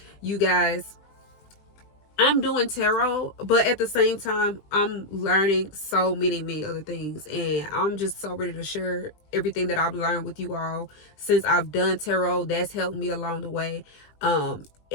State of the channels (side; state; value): right; late; 20 ms